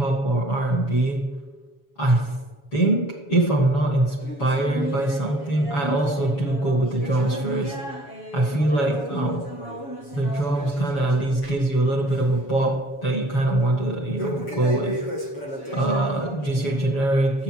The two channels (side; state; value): right; late; 7.1 ms